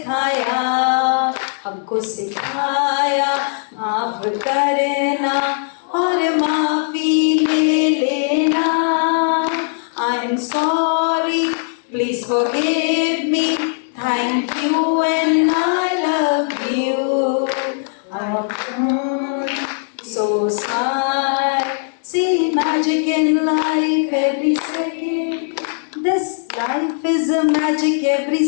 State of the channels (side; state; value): right; silent; digital silence